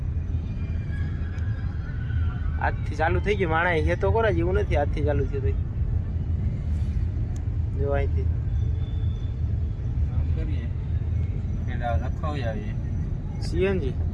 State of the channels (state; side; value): identical; both; correlation 1.00